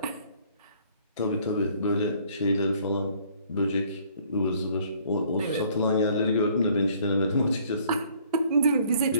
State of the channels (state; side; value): inverted; both; correlation -0.60